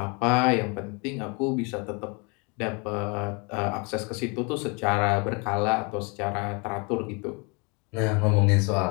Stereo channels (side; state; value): right; quieter; 31.5 dB